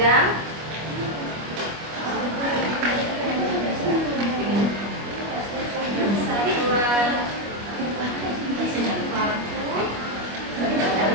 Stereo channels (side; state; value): left; late; 25 ms